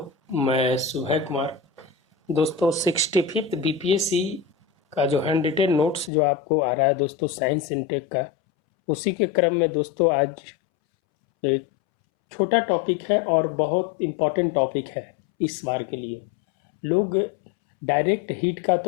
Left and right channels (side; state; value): right; drops out; at 6.1 s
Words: मैं सुबह कुमार। दोस्तों 65th बीपीएससी का जो हैंड रिटेन नोट्स जो आपको आ रहा है दोस्तों साइंस इनटेक का, उसी के क्रम में दोस्तों आज एक छोटा टॉपिक है और बहुत इम्पोर्टेंट टॉपिक है इस बार के लिए। लोग डायरेक्ट हीट का